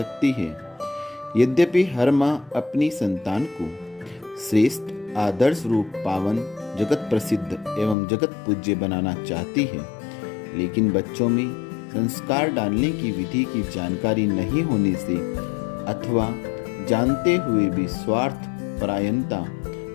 है। यद्यपि हर माँ अपनी संतान को श्रेष्ठ, आदर्श रूप, पावन, जगत प्रसिद्ध एवं जगत पूज्य बनाना चाहती है, लेकिन बच्चों में संस्कार डालने की विधि की जानकारी नहीं होने से अथवा जानते हुए भी स्वार्थ, परायणता,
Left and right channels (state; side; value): drops out; right; at 8.0 s